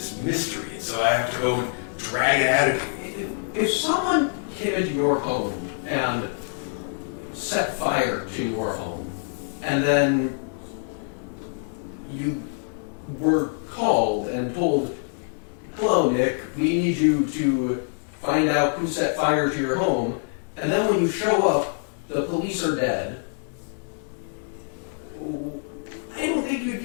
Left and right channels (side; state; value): right; silent; digital silence